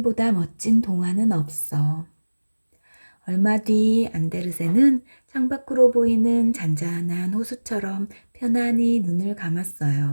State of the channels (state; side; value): inverted; both; correlation -1.00